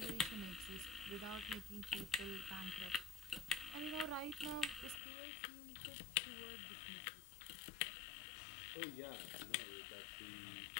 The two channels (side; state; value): right; drops out; at 5.0 s